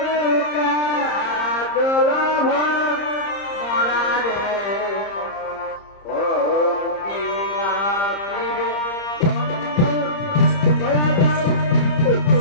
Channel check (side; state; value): right; late; 30 ms